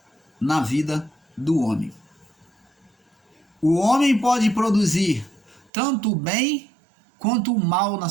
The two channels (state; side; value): drops out; left; at 5.7 s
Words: na vida do homem. O homem pode produzir tanto o bem quanto o mal na